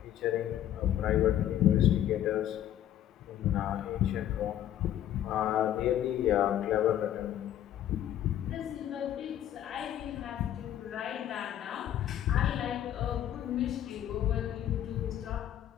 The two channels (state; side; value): quieter; right; 11.4 dB